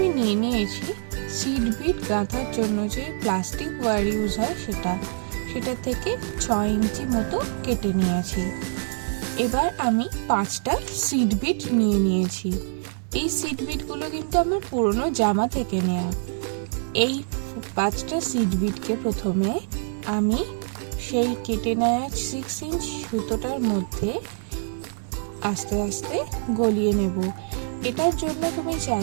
নিয়ে নিয়েছি সিড বিট গাঁথার জন্য যে প্লাস্টিক ওয়্যার ইউজ হয় সেটা থেকে 6 ইঞ্চি মতো কেটে নিয়েছি। এবার আমি 5টা সিড বিট নিয়ে নিয়েছি। এই সিড বিটগুলো কিন্তু আমার পুরনো জামা থেকে নেওয়া। এই 5টা সিড বিটকে প্রথমে আমি সেই কেটে নেওয়া 6 ইঞ্চ সুতোটার মধ্যে আস্তে আস্তে গলিয়ে নেব। এটার জন্য তুমি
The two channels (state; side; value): silent; left; digital silence